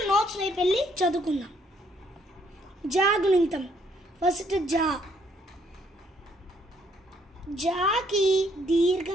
నోట్స్ వైపు వెళ్ళి చదువుకుందాం. జా గుణింతం ఫస్ట్ జా, జాకి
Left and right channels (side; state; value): both; normal; correlation 0.68